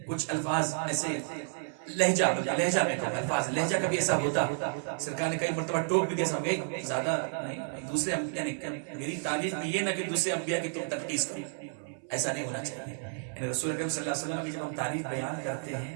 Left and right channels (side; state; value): left; silent; 57 dB below the other